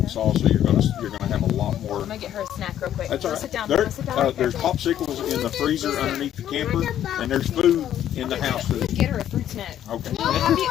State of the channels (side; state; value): right; quieter; 11.0 dB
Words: so you're gonna have a lot more. I'm gonna get her a snack real quick. That's all Go right. sit down. There, Go sit down. there's popsicles in the freezer underneath the camper, and there's food in the house. Get her a fruit snack. Okay.